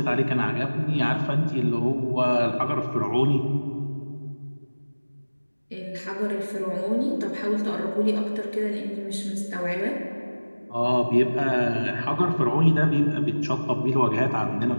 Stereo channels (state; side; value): inverted; both; correlation -1.00